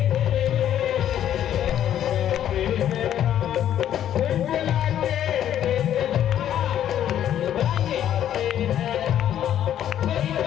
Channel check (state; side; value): quieter; right; 10.8 dB